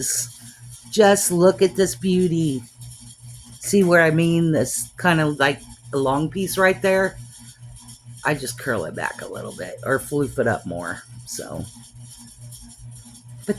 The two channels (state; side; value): identical; both; correlation 1.00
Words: Just look at this beauty. See where I mean? This kind of like a long piece right there. I just curl it back a little bit or floof it up more. So,